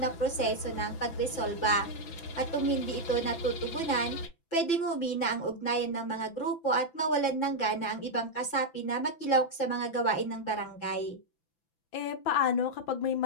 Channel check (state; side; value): late; right; 6.0 ms